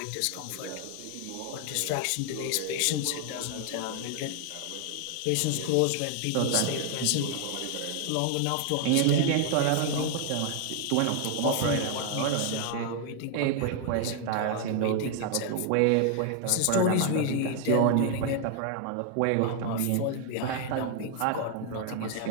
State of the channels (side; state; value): both; different; correlation 0.00